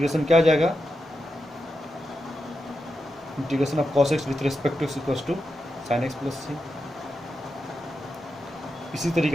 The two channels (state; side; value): normal; both; correlation 0.88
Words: क्या आ जाएगा, integration of cos X with respect to X equals to sine X plus C. इसी